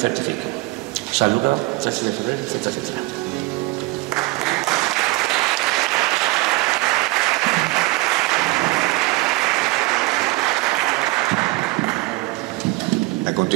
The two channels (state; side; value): quieter; left; 22.2 dB